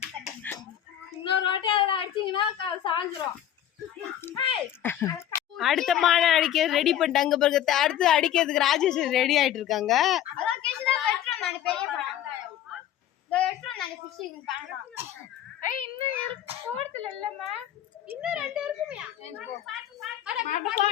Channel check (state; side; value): quieter; right; 11.2 dB